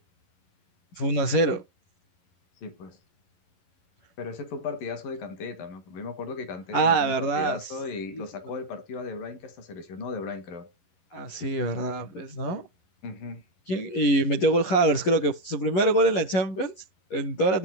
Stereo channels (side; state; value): right; late; 11 ms